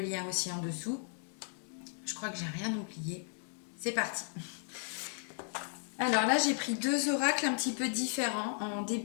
aussi en dessous. Je crois que j'ai rien oublié. C'est parti. Alors là, j'ai pris deux oracles un petit peu différents en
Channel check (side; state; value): right; silent; 54 dB below the other